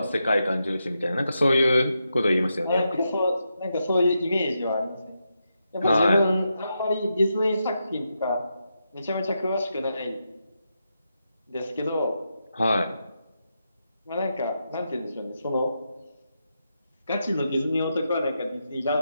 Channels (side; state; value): both; inverted; correlation -0.85